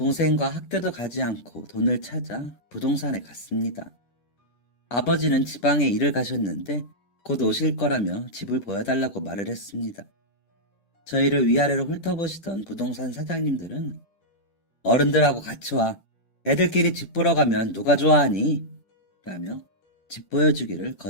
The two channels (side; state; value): right; late; 10 ms